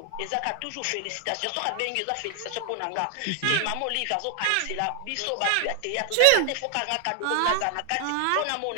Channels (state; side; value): different; both; correlation 0.00